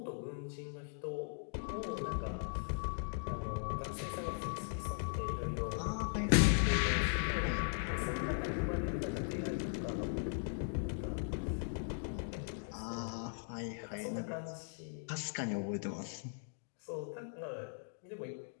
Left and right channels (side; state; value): right; silent; digital silence